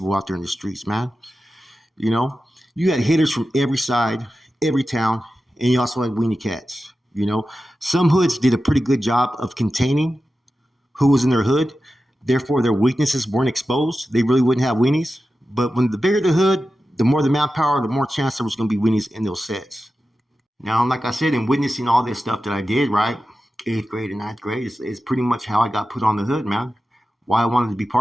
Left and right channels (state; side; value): normal; both; correlation 0.93